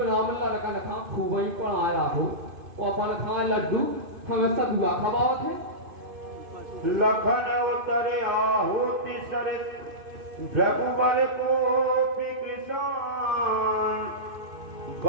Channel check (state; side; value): late; left; 2.5 ms